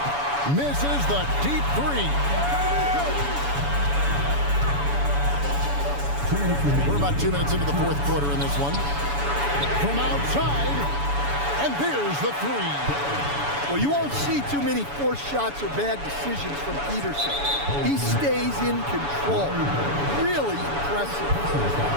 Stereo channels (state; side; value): late; left; 7.0 ms